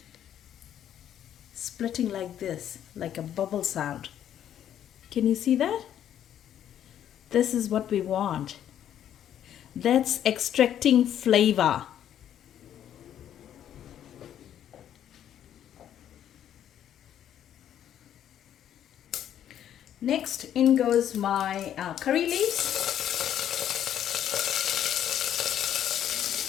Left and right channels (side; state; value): right; quieter; 10.4 dB